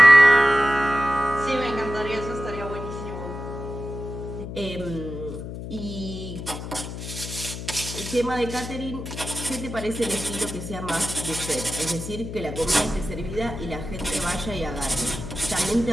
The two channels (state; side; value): noise; left; hum, 8 dB below the sound